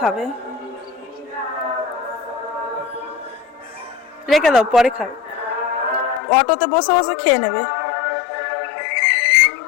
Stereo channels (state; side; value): drops out; right; at 6.2 s